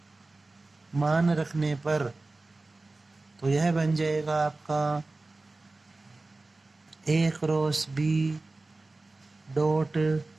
मान रखने पर तो यह बन जाएगा आपका ए क्रॉस बी डॉट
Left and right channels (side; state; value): left; quieter; 3.2 dB